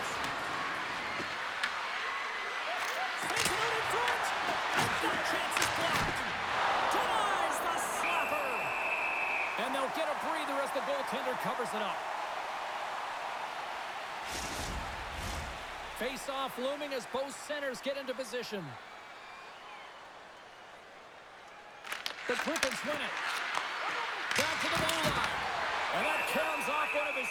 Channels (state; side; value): identical; both; correlation 1.00